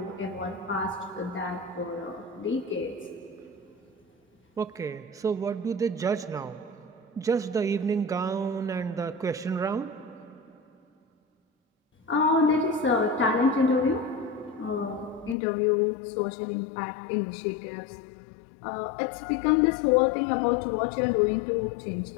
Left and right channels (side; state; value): right; drops out; at 15.4 s